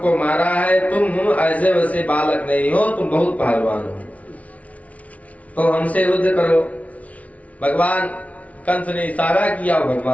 मारा है, तुम ऐसे वैसे बालक नहीं हो, तुम बहुत पहलवान हो, तो हमसे युद्ध करो। भगवान कंस ने इशारा किया और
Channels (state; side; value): late; right; 0.067 ms